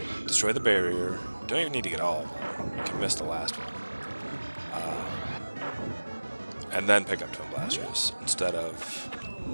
destroy the barrier. Don't even need to get all of them. You can miss the last one. And then pick up Twin Blasters, instead of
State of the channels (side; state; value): both; inverted; correlation -1.00